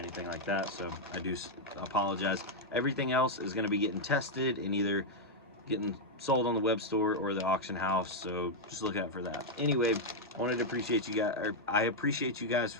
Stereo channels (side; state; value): both; normal; correlation -0.01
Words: like that, so I do apologize. Everything else is going to be getting tested and either getting sold on the web store or the auction house, so just look out for that. Anyway, I wanted to appreciate you guys, or I appreciate you guys